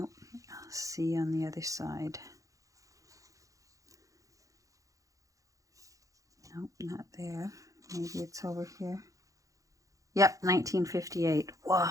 I'll see on the other side. Nope, not there. Maybe it's over here. Yep, 1958. Whoa.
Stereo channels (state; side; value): late; left; 0.16 ms